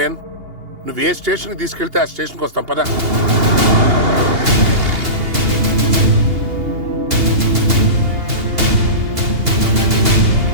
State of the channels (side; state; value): left; late; 2.8 ms